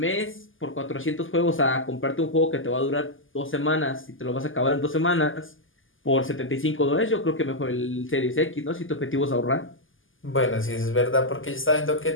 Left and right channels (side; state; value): right; late; 0.58 ms